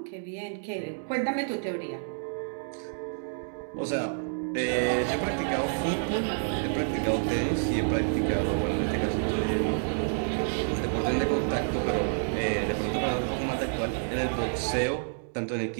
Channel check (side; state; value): left; silent; digital silence